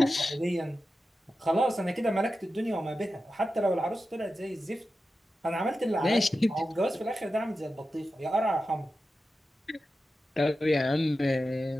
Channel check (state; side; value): normal; both; correlation 0.92